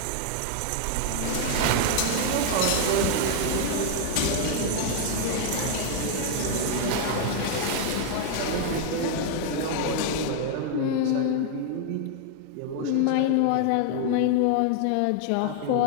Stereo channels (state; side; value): different; both; correlation 0.00